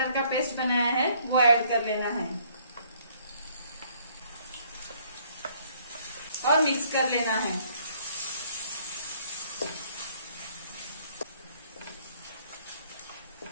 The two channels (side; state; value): both; inverted; correlation -0.63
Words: का पेस्ट बनाया है वो ऐड कर लेना है और मिक्स कर लेना है।